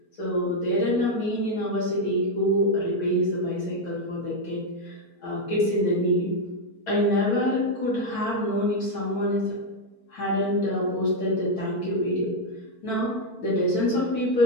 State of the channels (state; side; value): late; right; 4.5 ms